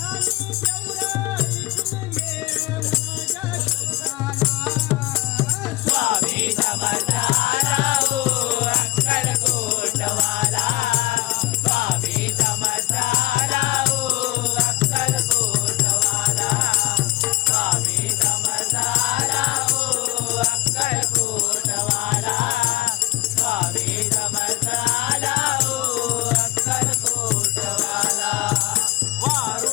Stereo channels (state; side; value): quieter; right; 18.5 dB